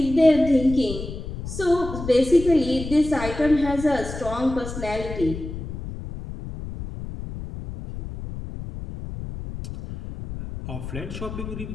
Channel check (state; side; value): noise; left; rumble, 9 dB below the sound